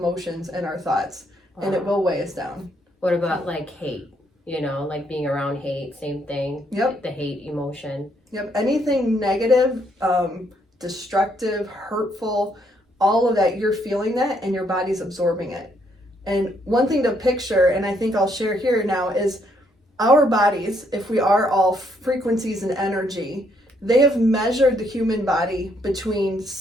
and our thoughts, and it will weigh us down. What about like hate? Like being around hate, same thing. Yep. The hate emotion. Yep. Anything negative, destructive, hurtful, all of that, you're feeling that, and your body's absorbing it. And one thing to picture, and I think I'll share here now, is our bodies, if we are all frequencies and energy, they have measured the human body between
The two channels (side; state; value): both; normal; correlation 0.72